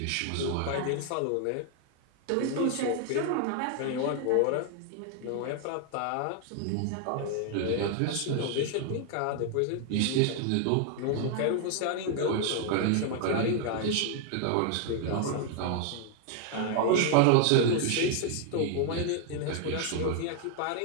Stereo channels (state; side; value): different; both; correlation 0.00